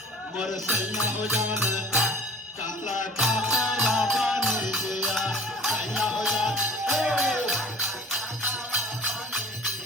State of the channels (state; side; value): normal; both; correlation 0.44